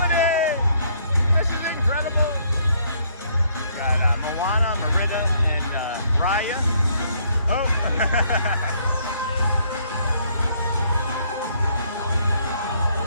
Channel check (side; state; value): both; inverted; correlation -0.67